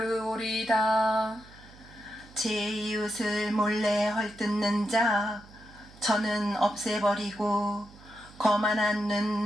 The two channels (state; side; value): noise; right; hum, 22 dB below the sound